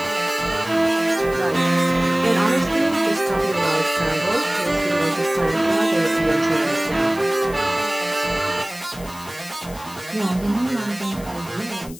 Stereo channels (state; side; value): noise; left; hiss, 18 dB below the sound